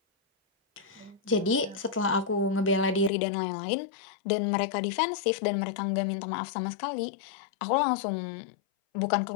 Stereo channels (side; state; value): right; drops out; at 3.1 s